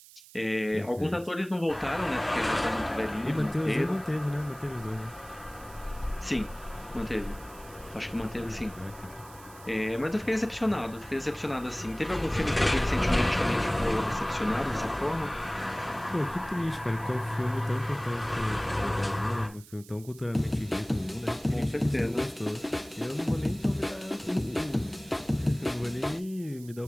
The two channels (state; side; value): noise; right; hiss, 21 dB below the sound